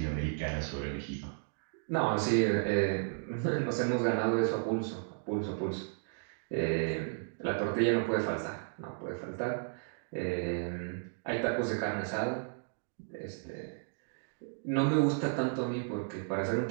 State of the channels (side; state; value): left; silent; digital silence